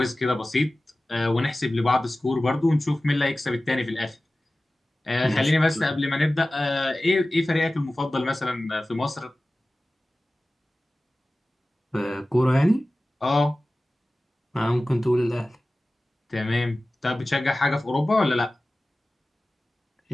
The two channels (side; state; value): both; normal; correlation 0.97